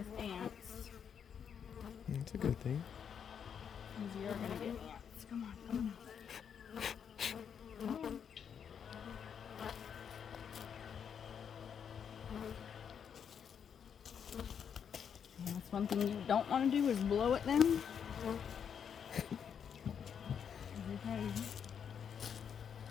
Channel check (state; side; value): quieter; right; 7.7 dB